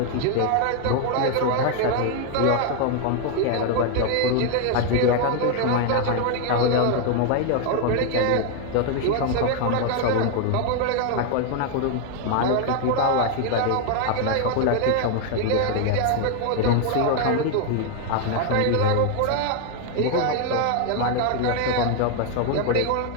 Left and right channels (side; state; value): both; different; correlation 0.00